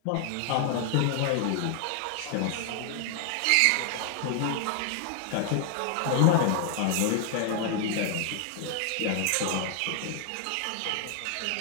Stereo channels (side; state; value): both; different; correlation 0.00